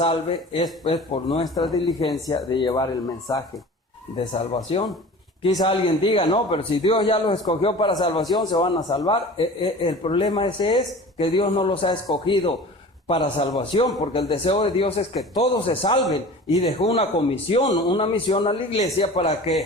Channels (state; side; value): normal; both; correlation 0.39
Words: es pues por nuestra diligencia de llevar el mensaje de salvación. Quizá alguien diga, no, pero si Dios ya los escogió para salvación, se van a salvar. El problema ese es que Dios no los ha escogido para salvación, porque el deseo de Dios es que todos se salven, y dejó una misión a la iglesia para que